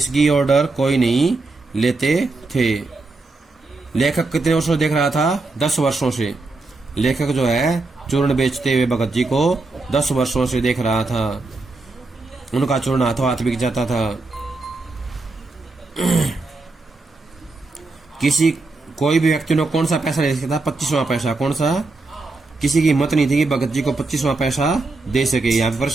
ऑर्डर कोई नहीं लेते थे। लेखक कितने वर्षों से देख रहा था, 10 वर्षों से। लेखक जो है चूर्ण बेचते हुए भगत जी को 10 वर्षों से देख रहा था। उनका चूर्ण हाथों हाथ बिक जाता था। किसी कोई भी व्यक्ति ने कौन सा पैसा दे सकता था, 25वां पैसा। कौन सा, किसी की हिम्मत नहीं थी कि भगत जी को 25वां पैसा दे सके। यहाँ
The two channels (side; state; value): left; quieter; 3.4 dB